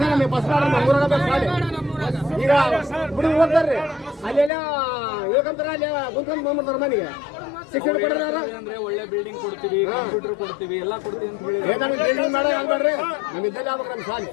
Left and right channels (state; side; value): drops out; right; at 4.5 s